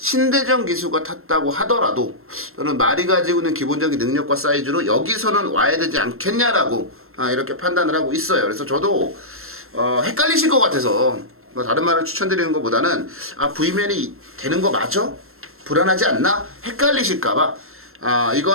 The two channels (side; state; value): left; late; 0.62 ms